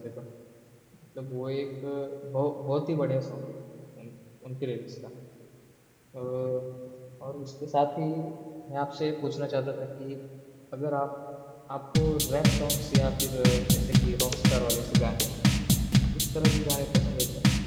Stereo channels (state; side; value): identical; both; correlation 1.00